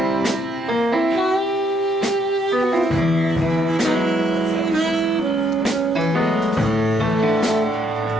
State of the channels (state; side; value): normal; both; correlation 0.73